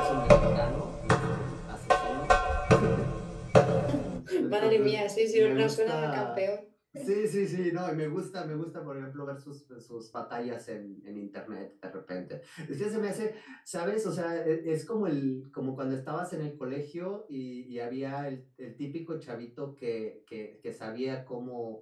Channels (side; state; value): both; identical; correlation 1.00